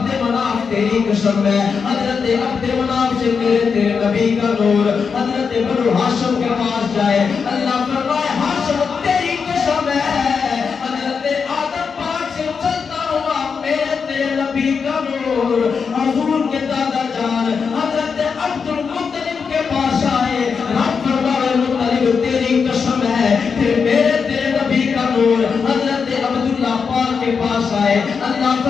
مناف تیری قسم قسم ہے حضرت عبد مناف سے میرے تیرے نبی کا نور حضرت بنو ہاشم کے پاس جائے اللہ فرمائے ہاشم تیری قسم ہے حضرت آدم پاک سے چلتا ہوا میرے تیرے نبی کا نور حضور کے دادا جان حضرت عبد المطلب کے پاس آئے رب فرمائے مطلب تیری قسم ہے پھر میرے تیرے نبی کا نور حضرت عبداللہ پاک کے پاس آئے اللہ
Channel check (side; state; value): right; quieter; 5.8 dB